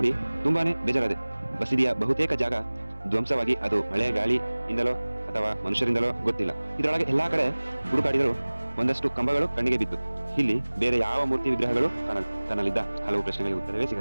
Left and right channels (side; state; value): both; inverted; correlation -1.00